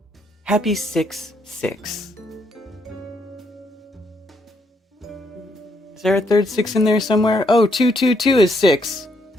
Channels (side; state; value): both; normal; correlation 0.74